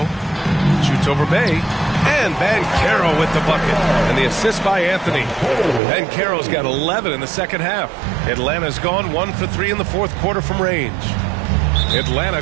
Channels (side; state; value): left; drops out; at 5.8 s